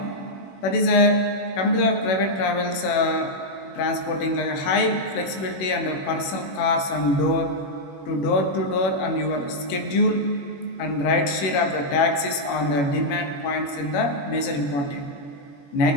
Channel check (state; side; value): late; right; 21 ms